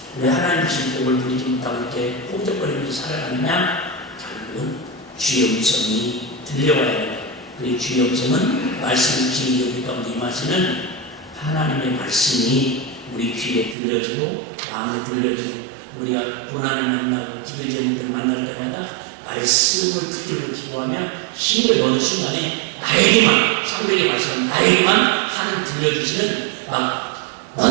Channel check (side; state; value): left; drops out; at 13.8 s